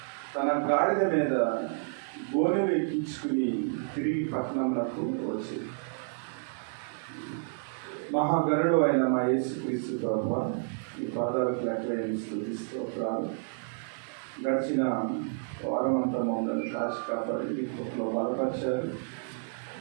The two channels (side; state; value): left; silent; 58 dB below the other